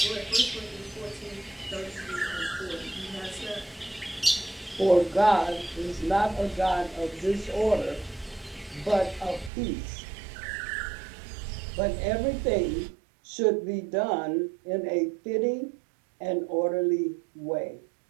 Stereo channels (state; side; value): drops out; left; at 9.5 s